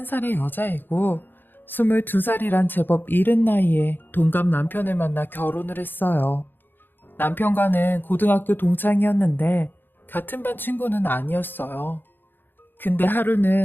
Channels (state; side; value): late; right; 0.095 ms